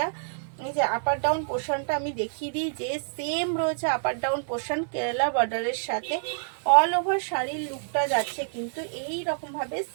এই যে আপার ডাউন পোর্শনটা আমি দেখিয়ে দিই, যে সেম রয়েছে আপার ডাউন পোর্শন কেরালা বর্ডারের সাথে। অল ওভার শাড়ির লুকটা যাচ্ছে কিন্তু এই রকম ভাবে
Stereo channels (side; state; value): left; silent; digital silence